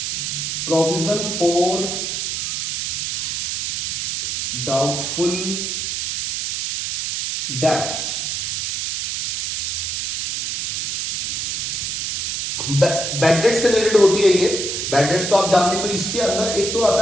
Provision for doubtful debts. Bad dates से रिलेटेड होती है ये। बैड डेट्स तो आप जानते हैं। तो इसके अंदर एक तो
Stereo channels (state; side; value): noise; right; hiss, 1 dB below the sound